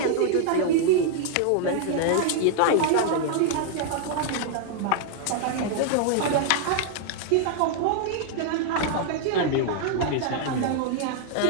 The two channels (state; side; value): different; both; correlation -0.01